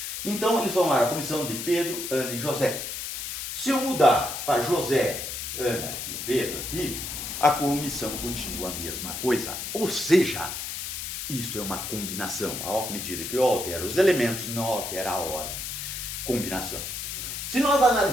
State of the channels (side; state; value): left; noise; hiss, 5 dB below the sound